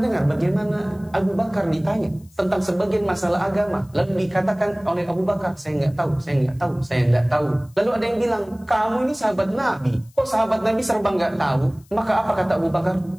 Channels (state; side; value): noise; left; hiss, 30 dB below the sound